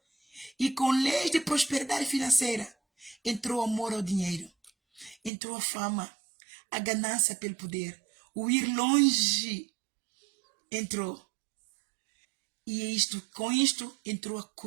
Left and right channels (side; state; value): left; drops out; at 5.3 s